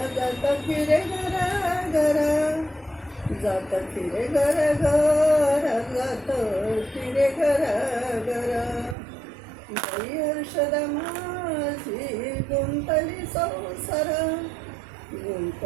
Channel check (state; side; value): drops out; left; at 9.0 s